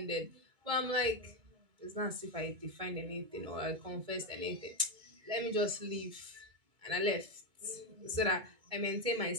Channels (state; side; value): late; left; 2.2 ms